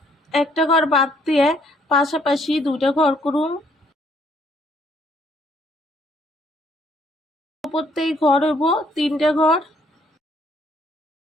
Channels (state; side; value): normal; both; correlation 0.66